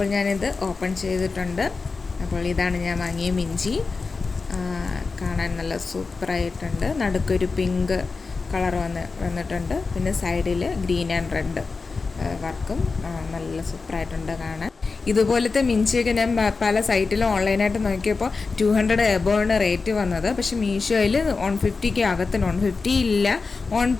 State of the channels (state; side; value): quieter; right; 4.3 dB